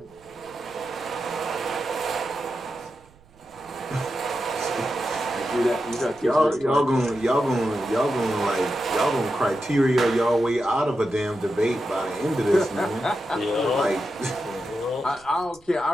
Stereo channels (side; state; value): right; noise; rumble, 29 dB below the sound